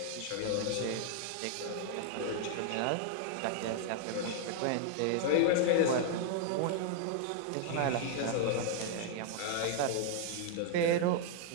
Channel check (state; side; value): different; both; correlation -0.01